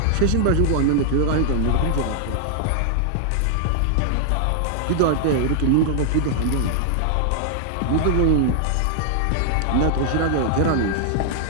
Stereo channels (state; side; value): different; both; correlation 0.00